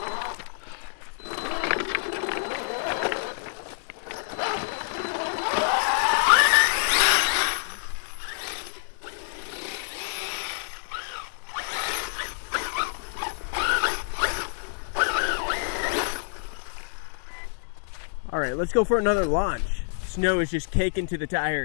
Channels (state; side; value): silent; right; digital silence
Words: All right, let's go for another launch. Snow is just caking to the